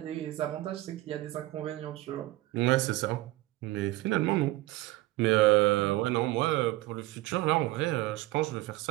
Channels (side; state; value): left; quieter; 18.2 dB